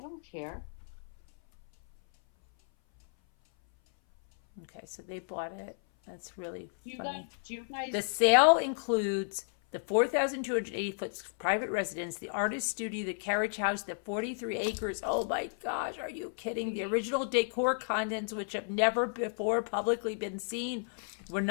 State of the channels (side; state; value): right; silent; 56 dB below the other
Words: don't care. Okay, so they bought it. That's really Do funny. you guys? The sale includes the 4,280-foot private residence, the artist studio, the carriage house, the 43 acres. Oh my gosh, are you kidding? The original decor contents, which have never before publicly been seen, were